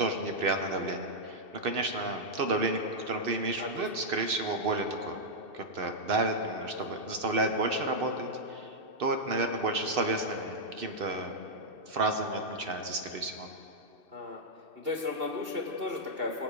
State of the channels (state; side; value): late; left; 2.6 ms